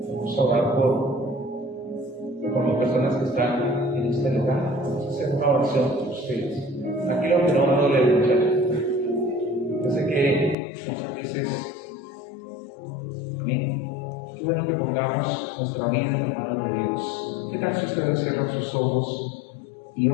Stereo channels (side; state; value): right; drops out; at 10.6 s